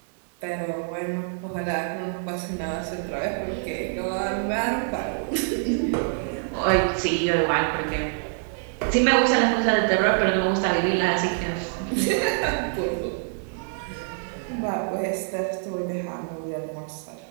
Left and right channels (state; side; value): silent; left; 61 dB below the other